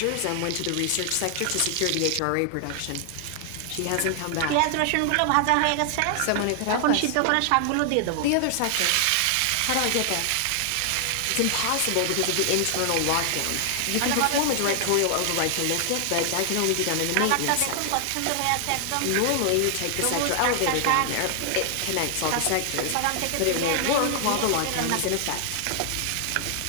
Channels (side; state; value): both; different; correlation 0.00